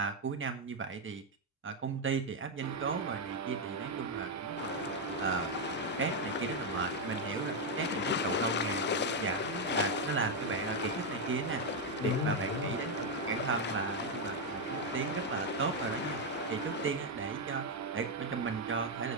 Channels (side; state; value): both; normal; correlation 0.02